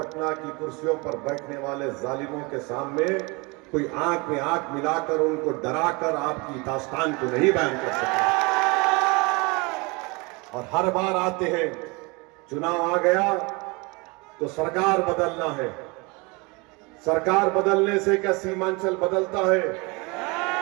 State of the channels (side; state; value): left; quieter; 27.6 dB